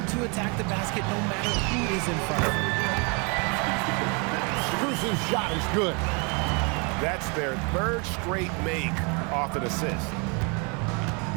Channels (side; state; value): left; quieter; 33.1 dB